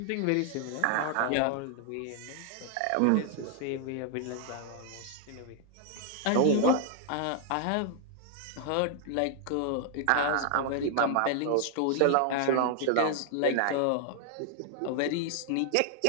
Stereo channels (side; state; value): both; different; correlation 0.00